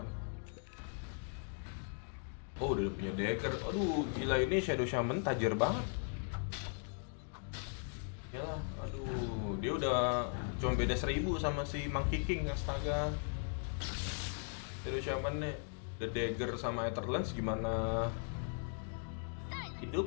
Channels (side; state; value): right; silent; 52 dB below the other